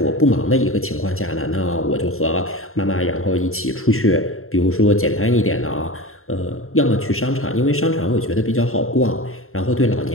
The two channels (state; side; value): late; right; 0.62 ms